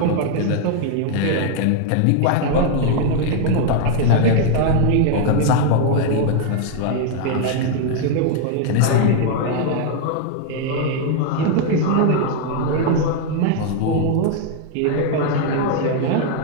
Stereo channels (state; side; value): different; both; correlation 0.00